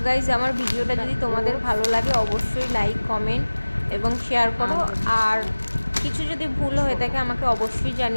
গাইজ, আমার ভিডিওটা যদি তোমাদের ভালো লাগে অবশ্যই লাইক, কমেন্ট এবং শেয়ার করো। আর কিছু যদি ভুল হয়ে থাকে আমাকে অবশ্যই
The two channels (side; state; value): both; inverted; correlation -1.00